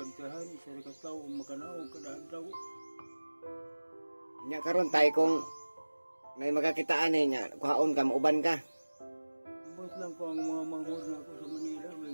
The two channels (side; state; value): both; inverted; correlation -1.00